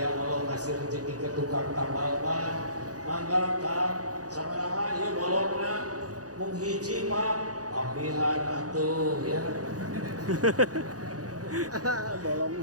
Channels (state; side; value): late; left; 0.67 ms